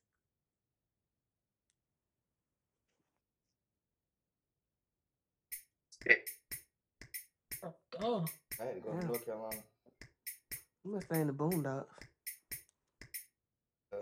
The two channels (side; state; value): both; identical; correlation 1.00